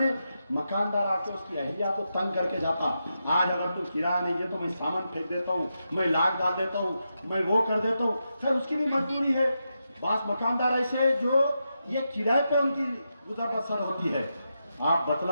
मकानदार आके उसकी अहलिया को तंग करके जाता, आज अगर तू किराया नहीं दे तो मैं सामान फेंक देता हूँ, मैं लाख डाल देता हूँ, मैं वो कर देता हूँ। फिर उसकी भी मजबूरी है। बास मकानदार ऐसे जो ये किराए पे उनकी गुजर बसर होती है। आप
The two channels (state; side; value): inverted; both; correlation -0.87